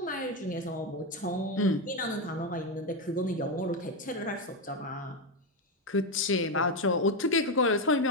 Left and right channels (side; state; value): both; normal; correlation 0.09